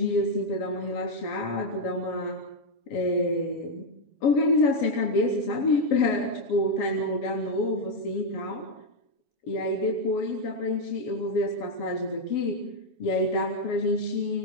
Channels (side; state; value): right; late; 7.1 ms